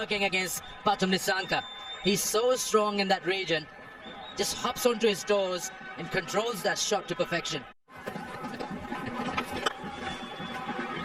against Pathum Nisanka. He's so strong in that region. Just hops onto his toes and controls that shot to perfection.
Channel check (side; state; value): both; identical; correlation 1.00